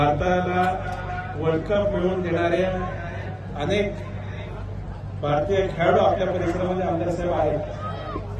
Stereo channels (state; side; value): identical; both; correlation 1.00